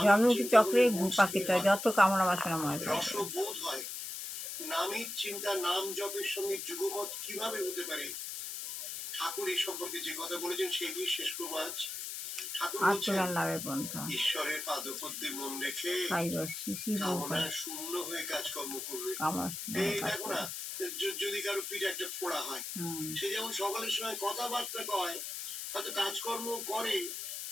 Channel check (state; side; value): noise; left; hiss, 6 dB below the sound